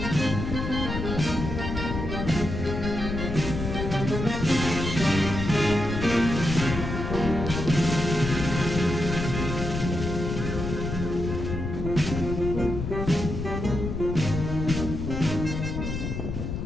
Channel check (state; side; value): noise; left; rumble, 4 dB below the sound